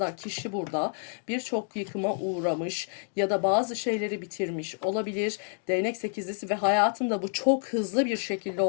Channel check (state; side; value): silent; right; 59 dB below the other